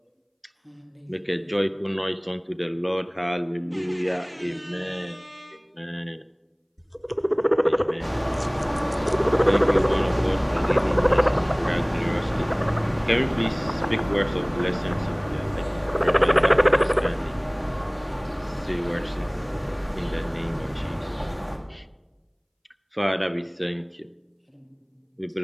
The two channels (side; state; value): both; identical; correlation 1.00